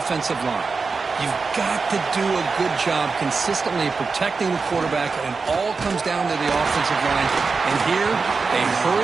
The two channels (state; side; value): quieter; left; 4.6 dB